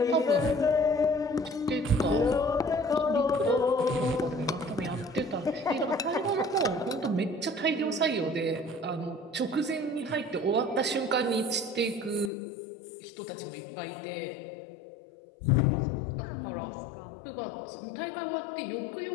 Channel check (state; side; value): drops out; right; at 12.3 s